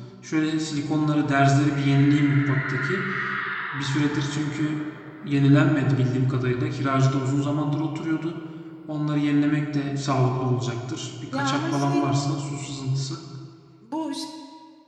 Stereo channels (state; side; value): identical; both; correlation 1.00